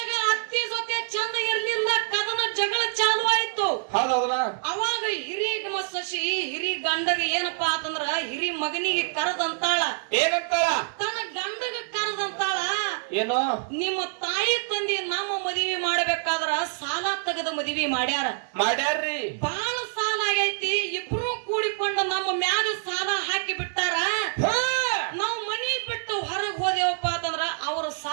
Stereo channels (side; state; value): left; silent; digital silence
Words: ಅತ್ತಿ ಜೊತೆ ಚಂದ ಇರ್ಲಿಲ್ಲ, ಕದನ ಜಗಳ ಚಾಲು ಆಯ್ತು. ಹೌದೌದಲ್ಲ? ಅವಾಗ ಹಿರಿ ಸೊಸಿ ಹಿರಿ ಗಂಡಗ ಏನಪ್ಪಾ ಅಂತಂದ್ರ ಹಿರಿ ಮಗನಿಗೆ ಕರದಂತಾಳ. ಏನಂತಾಳ? ತನ್ನ ಗಂಡಗ ಕರದಂತಾಳ, ಏನು ನಿಮ್ಮ ತಾಯಿ ತಂದಿ ನಮ್ಮ ಮದುವೆ ಮಾಡ್ಬೇಕಾದ್ರ ಸಾಲ ತೆಗೆದ ಮದುವೆ ಮಾಡ್ಯಾರ್ರಿ. ಬಾಳ ಸಾಲ ಆಗೈತಿ. ಇಬ್ರು ಕೂಡಿಕೊಂಡು ನಮ್ಮ ಮ್ಯಾಗ ಸಾಲ ಹಾಕಿ ಬಿಟ್ಟಾರ. ನಾವು ಮನಿ ಬಿಟ್ಟು ಹೊರಗ್ ಹೋದೇವಪ್ಪ ಅಂತಂದ್ರ ಅವ್ರ